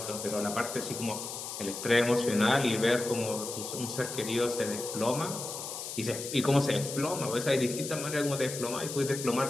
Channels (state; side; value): noise; left; hiss, 7 dB below the sound